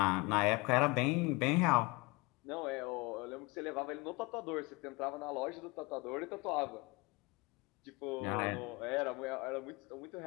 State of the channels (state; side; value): quieter; right; 25.9 dB